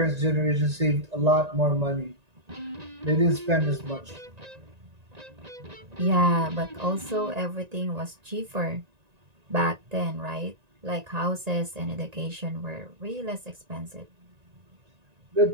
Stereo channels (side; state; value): left; late; 1.9 ms